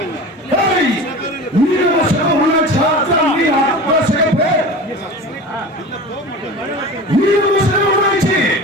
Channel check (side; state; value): both; normal; correlation 0.34